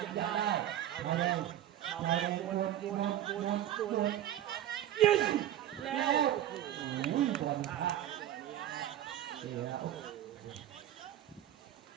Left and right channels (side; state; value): left; quieter; 12.1 dB